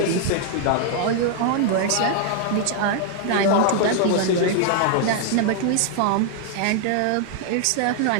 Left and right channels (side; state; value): both; different; correlation 0.00